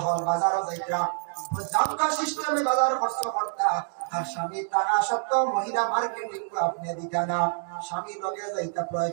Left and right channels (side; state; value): left; silent; 58 dB below the other